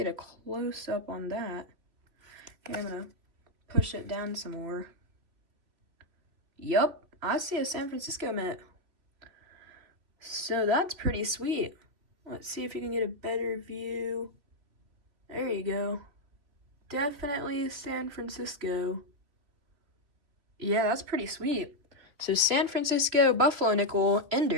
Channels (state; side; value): late; left; 3.0 ms